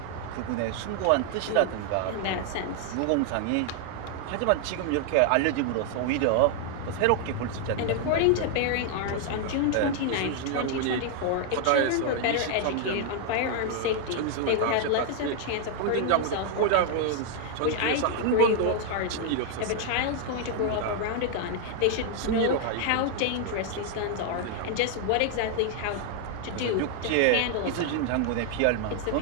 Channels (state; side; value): different; both; correlation 0.00